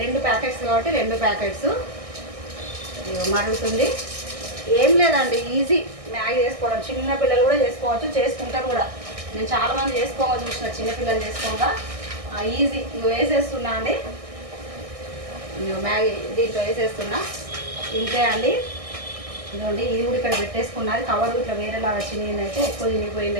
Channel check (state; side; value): late; left; 1.6 ms